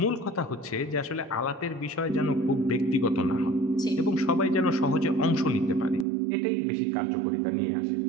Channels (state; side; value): drops out; left; at 6.1 s